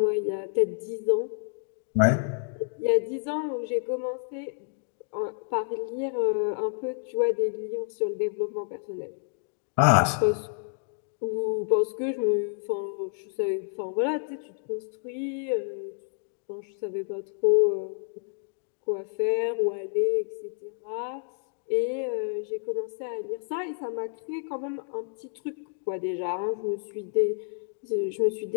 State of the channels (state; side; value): silent; right; digital silence